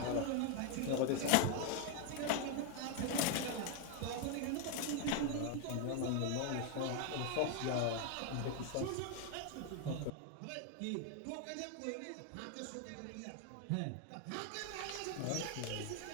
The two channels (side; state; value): both; different; correlation 0.01